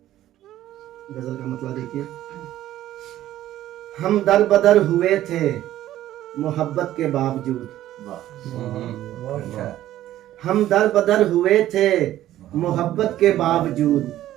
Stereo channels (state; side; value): quieter; left; 13.5 dB